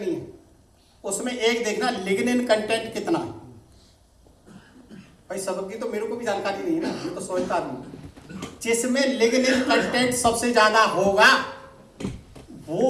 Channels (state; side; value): identical; both; correlation 1.00